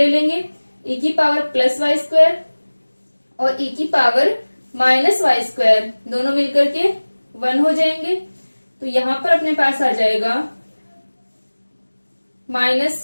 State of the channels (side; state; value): both; inverted; correlation -1.00